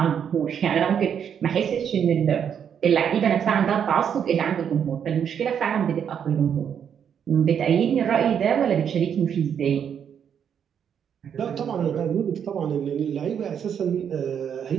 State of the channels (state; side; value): quieter; left; 8.1 dB